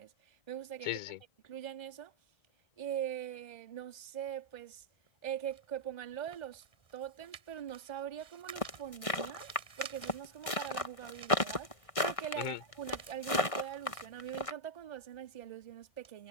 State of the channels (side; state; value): right; late; 1.6 ms